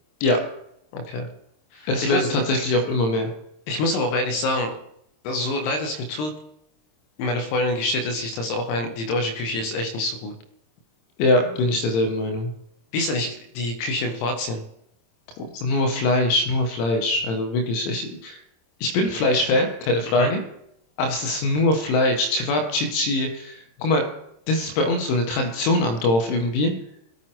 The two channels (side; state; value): right; late; 26 ms